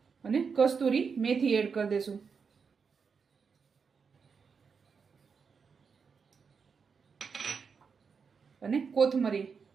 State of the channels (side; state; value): left; quieter; 5.7 dB